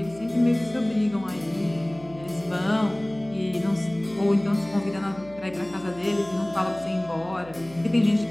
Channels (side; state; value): right; noise; hum, 20 dB below the sound